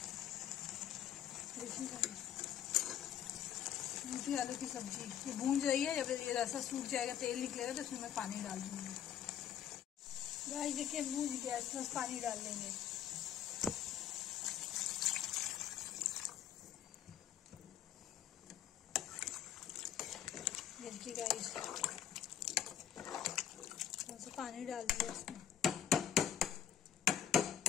न्यूट्री आलू की सब्जी ये भून रही है। जब ये रसा सूख जाएगा, तेल निकलेगा, तो इसमें मैं पानी डाल दूंगी। गाइस देखिए भून गया, इसमें पानी डाल देंगे। देखिए गाइस थोड़ा सा पानी डाल दिया इसमें।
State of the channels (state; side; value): quieter; right; 9.9 dB